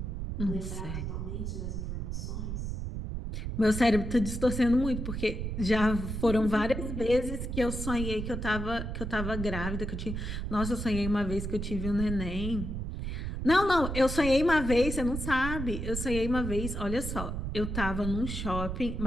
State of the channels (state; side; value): noise; right; rumble, 4 dB below the sound